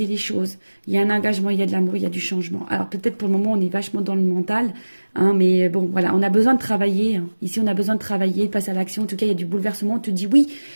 les choses. Il y a un engagement, il y a de l'amour, il y a du changement. Alors peut-être pour le moment, on est vachement dans le mental. Hein, mais bon, voilà, on a besoin de travailler. Hein. Ici, on a besoin de travailler, de passer à l'action. En tout cas, il y a du bouleversement. On te dit oui.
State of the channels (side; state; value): both; inverted; correlation -1.00